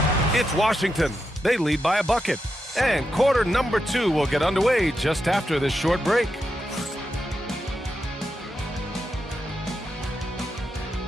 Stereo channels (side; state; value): both; normal; correlation 0.86